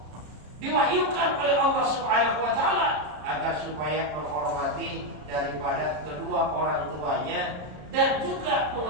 diwahyukan oleh Allah Subhanahu wa ta'ala agar supaya menghormati daripada kedua orang tuanya dan juga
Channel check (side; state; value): left; late; 33 ms